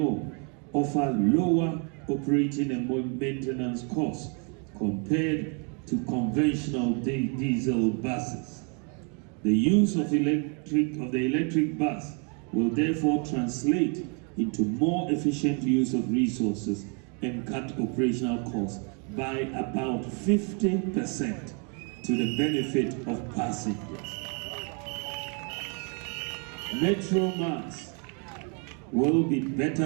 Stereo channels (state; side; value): quieter; left; 37.2 dB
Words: offer lower operating and maintenance costs compared to conventional diesel buses. The use of the electric bus will therefore translate into more efficient use of resources and cut operational costs by about 50% to the benefit of passengers. Metro Mass will be